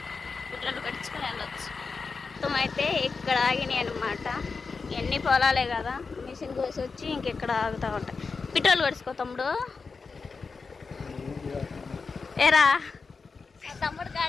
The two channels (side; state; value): right; quieter; 4.7 dB